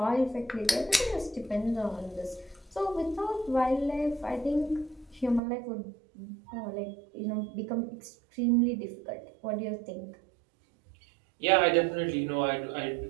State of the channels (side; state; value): left; drops out; at 5.4 s